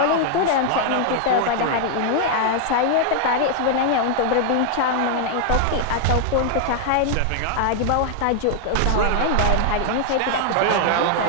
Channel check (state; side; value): different; both; correlation 0.00